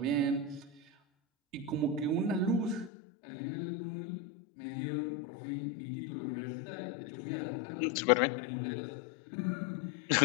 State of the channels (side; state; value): right; drops out; at 2.9 s